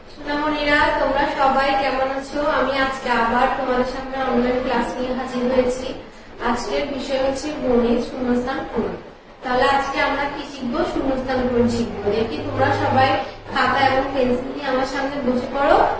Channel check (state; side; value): identical; both; correlation 1.00